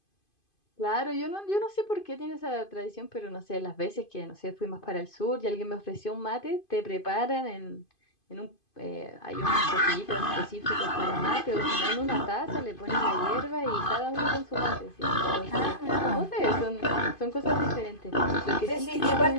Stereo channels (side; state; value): right; late; 2.5 ms